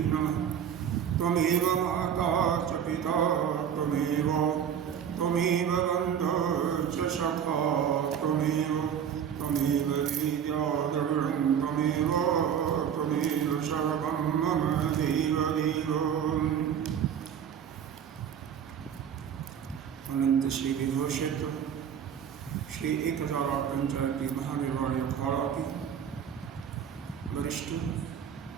नमः। त्वमेव माता च पिता त्वमेव बन्धुः च सखा त्वमेव विद्याद्रविणं त्वमेव सर्वं मम देवदेव। अनंत श्री विभूषित श्री 1008 पंचायती महानिर्वाणी अखाड़ा की वरिष्ठ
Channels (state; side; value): quieter; left; 8.4 dB